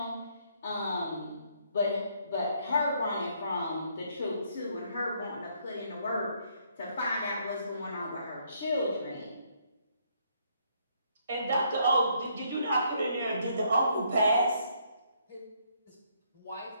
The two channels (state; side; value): inverted; both; correlation -0.70